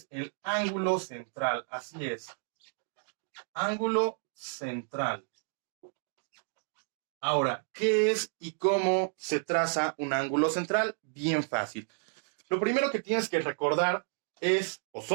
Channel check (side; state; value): left; silent; 57 dB below the other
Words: el ángulo central. Así es. Ángulo central. Ahora, ¿qué es y cómo se traza un ángulo central? Bien fácil. Lo primero que tienes que recordar es o